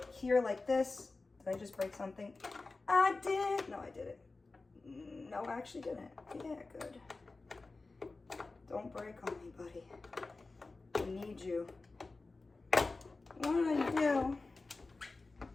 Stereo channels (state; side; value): quieter; right; 3.6 dB